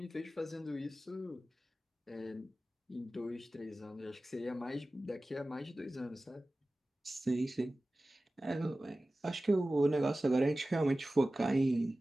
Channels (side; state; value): both; normal; correlation 0.96